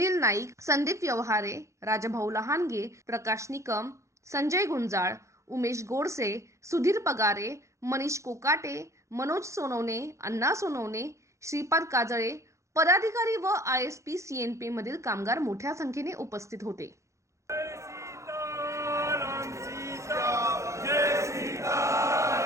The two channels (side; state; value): left; late; 0.14 ms